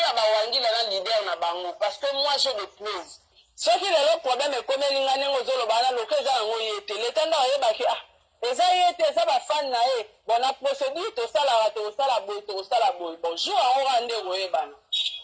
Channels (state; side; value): identical; both; correlation 1.00